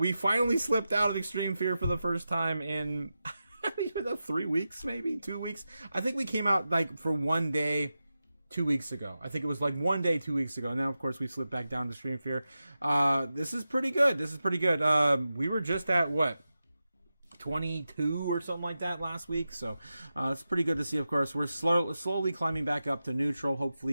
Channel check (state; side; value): inverted; both; correlation -0.91